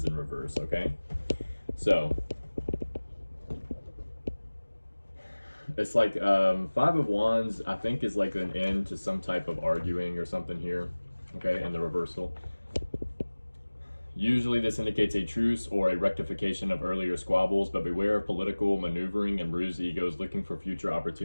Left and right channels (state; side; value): inverted; both; correlation -1.00